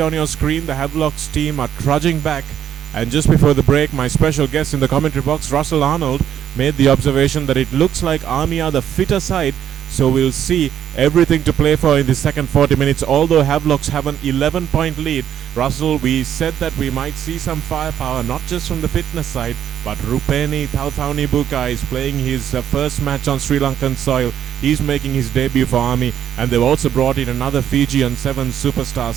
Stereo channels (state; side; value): quieter; left; 10.0 dB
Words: your screen. The Havelock's team are trudging back. And just before the break, my special guest in the commentary box, Russell Arnold, made the observation that it looks like Army are the fitter side. So we'll see everything to play for in the second 40 minutes. Although Havelocks have an 11-point lead, Russell, we said that we might see some firepower, not just from the fitness side, but Rupeni Thauthaunibuka is playing his first match on Sri Lankan soil. He's making his debut for Army, and they've also brought in another Fijian 7 superstar,